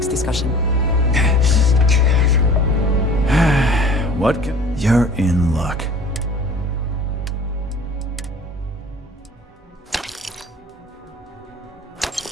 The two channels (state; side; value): normal; both; correlation 0.46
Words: discussion. What can... You're in luck.